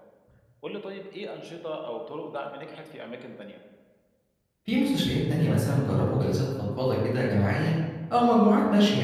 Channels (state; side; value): identical; both; correlation 1.00